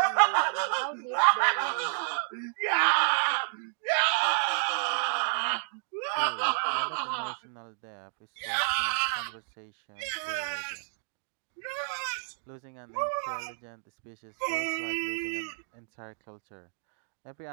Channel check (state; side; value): silent; left; digital silence